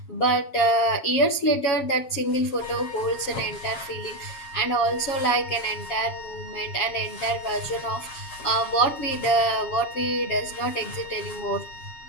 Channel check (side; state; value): right; late; 7.1 ms